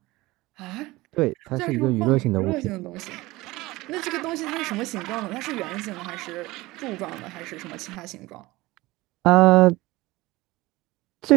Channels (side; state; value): left; quieter; 20.1 dB